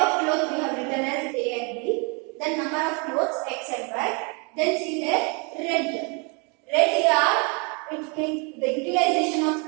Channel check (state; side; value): quieter; left; 33.2 dB